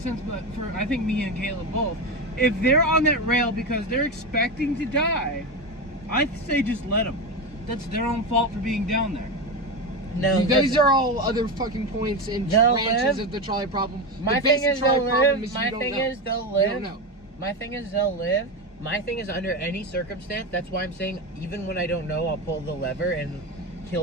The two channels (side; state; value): both; normal; correlation 0.17